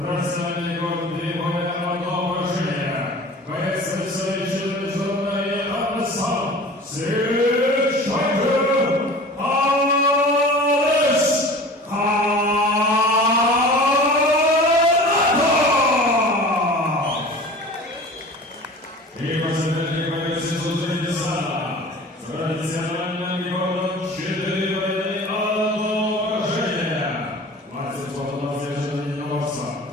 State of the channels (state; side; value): normal; both; correlation 0.40